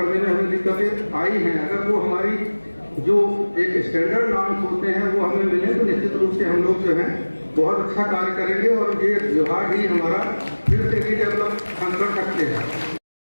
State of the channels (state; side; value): inverted; both; correlation -1.00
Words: में हमें दिक्कतें आई हैं। अगर वो हमारी जो एक स्टैंडर्ड नॉर्म्स होते हैं वो हमें मिले तो निश्चित रूप से हम लोग जो है बहुत अच्छा कार्य करेंगे और ये विभाग ही हमारा फिर से रीडेवलप हम कर सकते हैं।